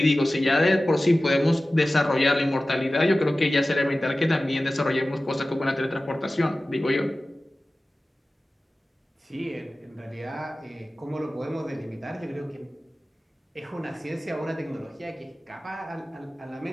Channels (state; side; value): normal; both; correlation 0.96